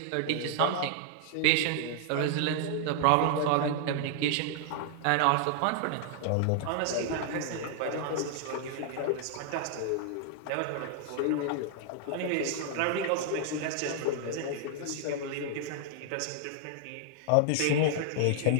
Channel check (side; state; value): both; different; correlation 0.00